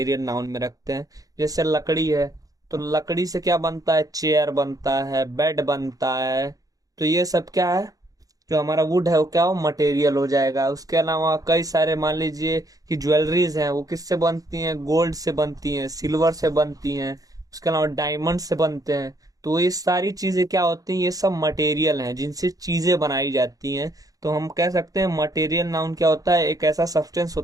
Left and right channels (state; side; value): late; left; 0.17 ms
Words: नाउन में रखते हैं। जैसे लकड़ी है, तो लकड़ी से क्या बनता है, चेयर बनता है, बेड बनता है। तो ये सब क्या है, जो हमारा वुड है वो क्या हो, मटेरियल हो जाएगा। उसके अलावा कई सारे मान लीजिए कि ज्वेलरीज हैं, वो किससे बनती हैं, गोल्ड से बनती हैं, सिल्वर से बनती हैं। उसके अलावा डायमंड से बनते हैं। तो ये सारी चीजें क्या होती हैं, ये सब मटेरियल हैं जिनसे चीजें बनाई जाती हैं। तो हम कह सकते हैं मटेरियल नाउन क्या होता है, एक ऐसा सब्सटेंस